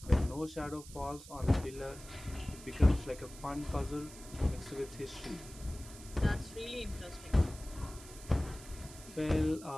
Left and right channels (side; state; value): right; noise; hiss, 17 dB below the sound